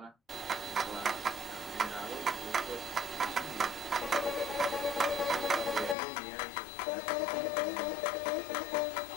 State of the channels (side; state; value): right; drops out; at 6.0 s